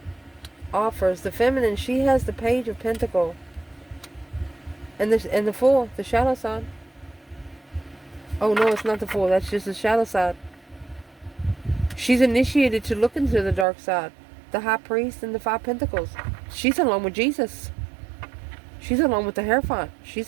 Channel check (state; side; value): drops out; left; at 13.7 s